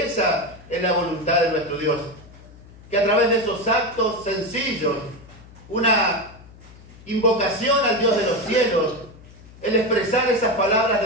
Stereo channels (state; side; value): noise; left; hum, 21 dB below the sound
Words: esa es la voluntad de nuestro Dios, que a través de esos actos sencillos, una invocación al Dios de los cielos, el expresar esas palabras